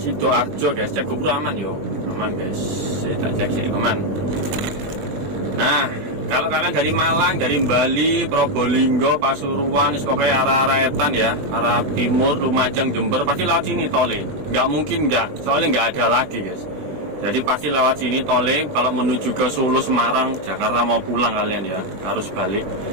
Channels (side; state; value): left; late; 20 ms